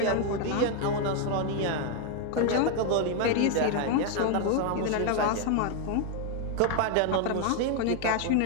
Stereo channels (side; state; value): both; different; correlation 0.01